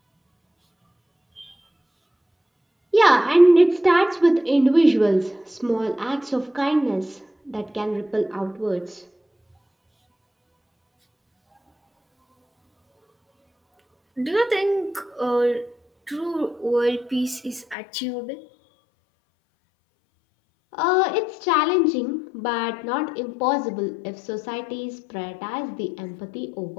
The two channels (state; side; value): drops out; right; at 17.8 s